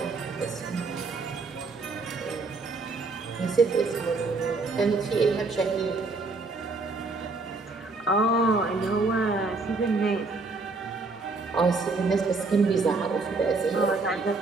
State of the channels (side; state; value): left; quieter; 3.7 dB